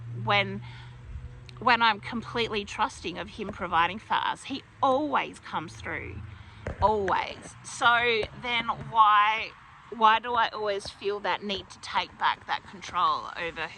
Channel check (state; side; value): identical; both; correlation 1.00